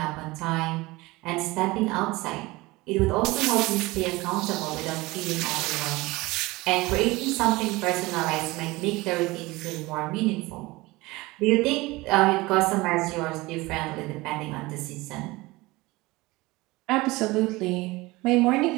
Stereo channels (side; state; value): left; quieter; 21.4 dB